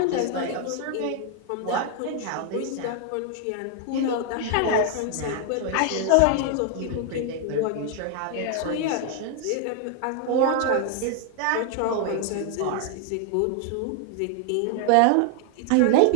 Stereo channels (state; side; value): different; both; correlation 0.00